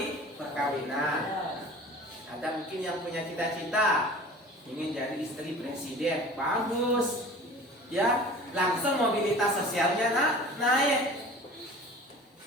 perkawinan. Ada mungkin yang punya cita-cita ingin jadi istri presiden, bagus, ya langsung mobilitas sosialnya naik.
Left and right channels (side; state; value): both; normal; correlation 0.41